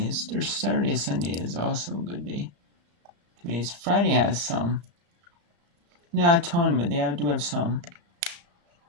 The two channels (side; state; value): left; late; 34 ms